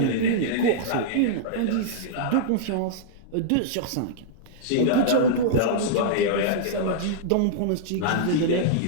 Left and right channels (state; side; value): different; both; correlation -0.02